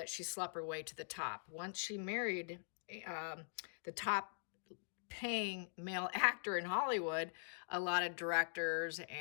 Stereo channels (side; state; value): right; silent; digital silence